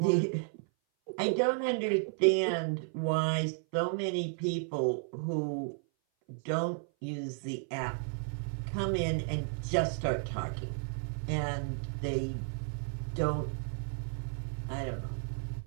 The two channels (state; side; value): silent; left; 56 dB below the other